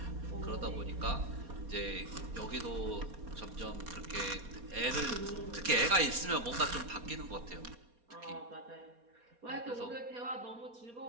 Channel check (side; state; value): left; late; 4.2 ms